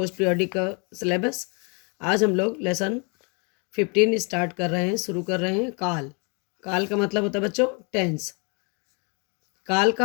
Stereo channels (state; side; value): quieter; right; 34.1 dB